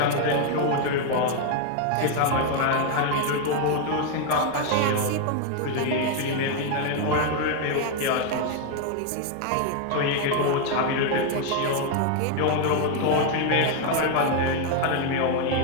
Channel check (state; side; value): different; both; correlation 0.00